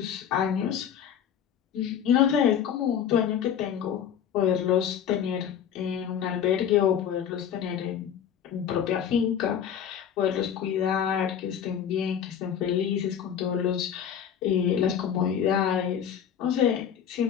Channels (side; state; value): right; quieter; 8.7 dB